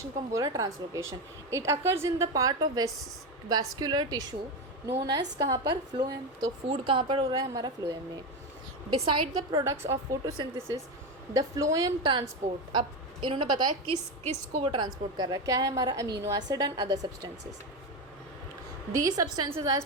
को हम बोल रहे हैं translocation. It occurs in the part of vascular tissue known as, कहाँ पर, फ्लोएम। तो फूड कहाँ पर हो रहा है, हमारा फ्लोएम में। Beside the products of photosynthesis the phloem transport, अब इन्होंने बताया किस किस को वो ट्रांसपोर्ट कर रहा है, क्या है हमारा, amino acid and other substances. These substances are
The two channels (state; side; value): normal; both; correlation 0.15